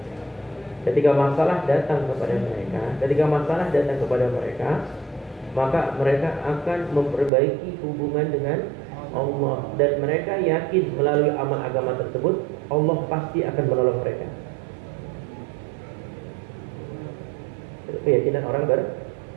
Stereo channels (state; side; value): drops out; left; at 7.3 s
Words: ketika masalah datang kepada mereka, maka mereka akan memperbaiki hubungan dengan Allah, dan mereka yakin melalui amal agama tersebut Allah pasti akan menolong mereka. Itu keyakinan orang beriman.